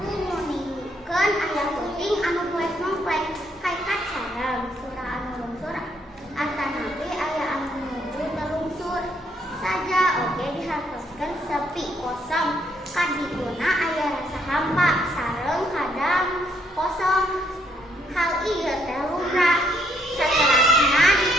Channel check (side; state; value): both; normal; correlation 0.71